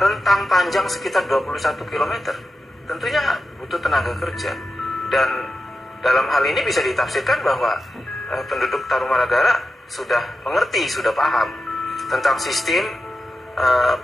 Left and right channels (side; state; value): both; normal; correlation 0.90